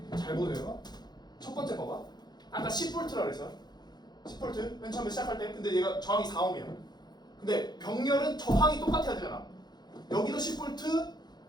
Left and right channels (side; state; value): right; late; 0.20 ms